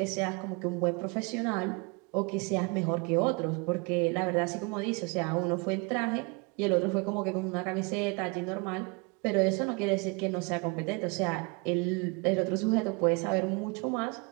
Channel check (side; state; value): left; quieter; 29.3 dB